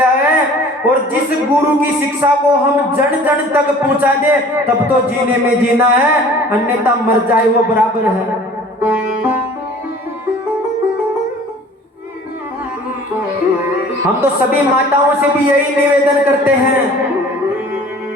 है, और जिस गुरु की शिक्षा को हम जन जन तक पहुंचा दे, तब तो जीने में जीना है, अन्यथा मर जाए वो बराबर है। हम तो सभी माताओं से भी यही निवेदन करते हैं,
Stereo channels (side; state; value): both; normal; correlation 0.48